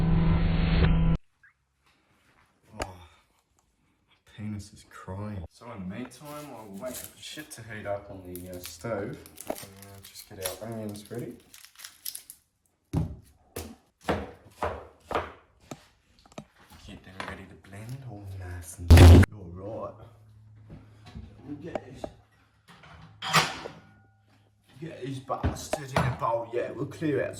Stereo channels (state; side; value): identical; both; correlation 1.00